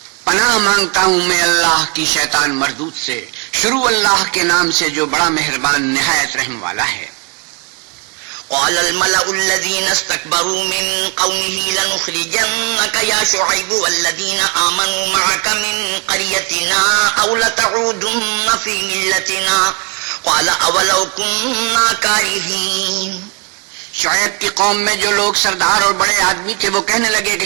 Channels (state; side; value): quieter; left; 32.6 dB